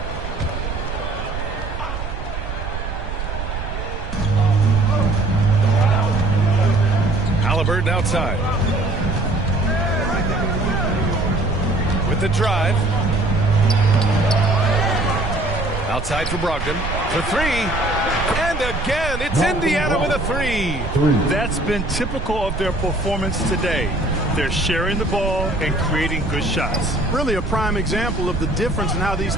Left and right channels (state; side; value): noise; right; rumble, 6 dB below the sound